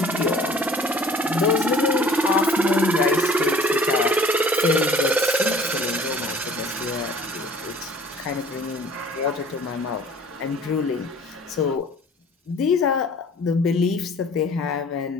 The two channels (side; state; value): both; normal; correlation 0.51